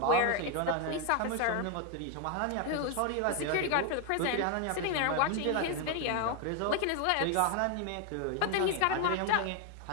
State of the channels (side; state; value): both; different; correlation 0.01